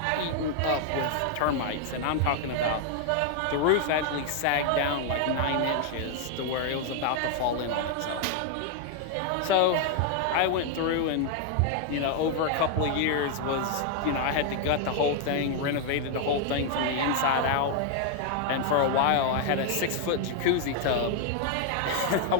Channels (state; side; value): different; both; correlation 0.00